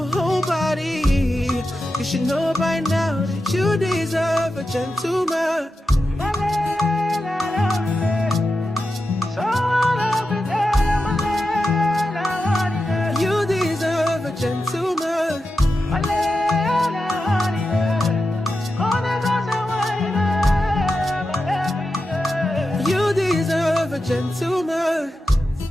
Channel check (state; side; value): normal; both; correlation 0.90